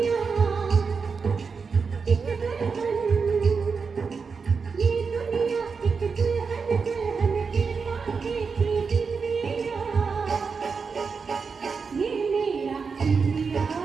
एक दुल्हन, ये दुनिया एक दुल्हन, दुल्हन के माथे की बिंदिया। ये मेरा India,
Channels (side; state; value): left; quieter; 5.3 dB